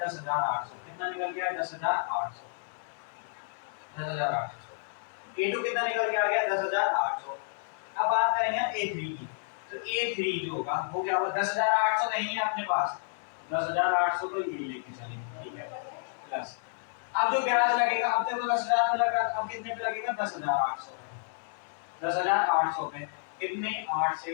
10,800, कितना निकल गया है 10,800, 10,800। A2 कितना निकल के आ गया 10,800। अब बात करेंगे हम A3 की, तो A3 जो होगा वो क्या होगा, 10,800 नहीं है अपने पास, 10,800 तो ये लेके चलेंगे, ठीक है, प्लस अब जो ब्याज लगेगा, अब देखो 10,000 पे लगा, अब कितने पे लगेगा 10,800 पे, 10,800 पे कितने 8 से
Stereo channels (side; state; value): right; silent; 57 dB below the other